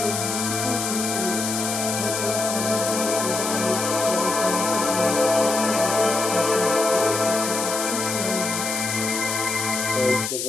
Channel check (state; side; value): noise; left; hiss, 3 dB below the sound